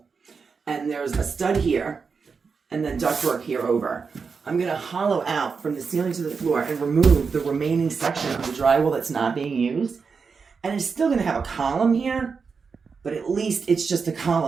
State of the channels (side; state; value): left; quieter; 5.3 dB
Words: And there's a stud here. And then ductwork here over. I'm going to hollow out from the ceiling to the floor and remove the remaining section of the drywall that's not being used. And it's still going to have a column here, but at least it's just a